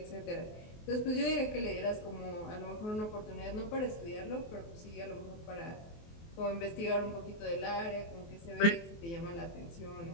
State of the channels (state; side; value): late; right; 24 ms